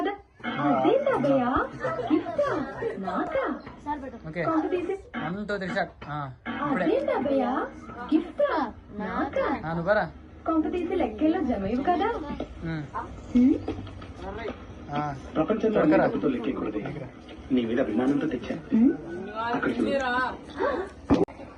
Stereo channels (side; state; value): both; identical; correlation 1.00